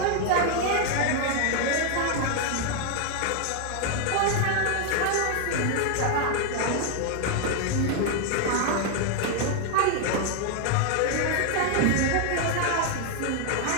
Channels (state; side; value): different; both; correlation 0.00